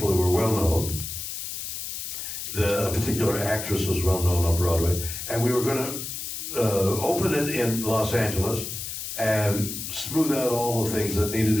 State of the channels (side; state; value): left; noise; hiss, 6 dB below the sound